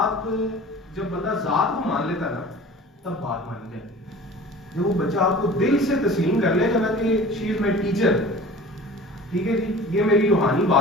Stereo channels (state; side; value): normal; both; correlation 0.42